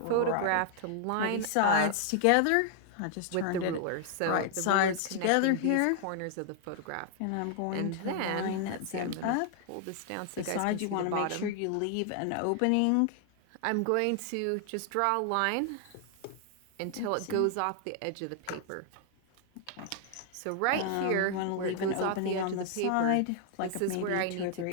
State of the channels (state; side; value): different; both; correlation 0.00